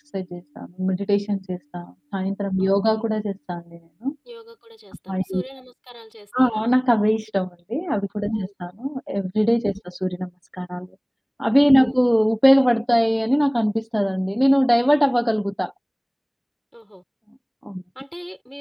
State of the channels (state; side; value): identical; both; correlation 1.00